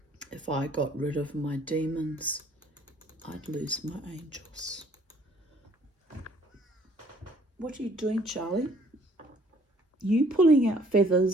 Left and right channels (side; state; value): both; normal; correlation 0.60